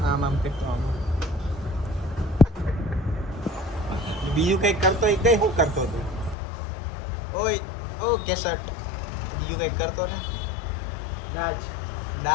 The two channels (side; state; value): right; drops out; at 6.4 s